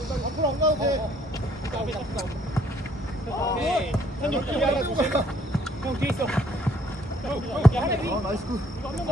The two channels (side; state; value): both; normal; correlation 0.64